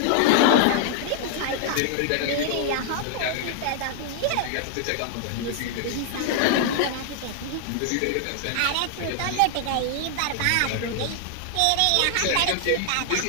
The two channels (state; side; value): different; both; correlation 0.00